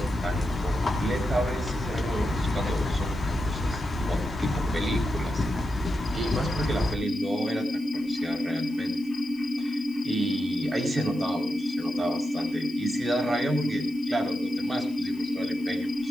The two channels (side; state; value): left; noise; hiss, 26 dB below the sound